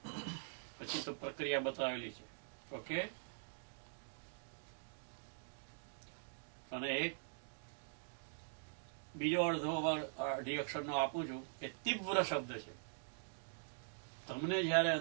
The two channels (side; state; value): left; silent; digital silence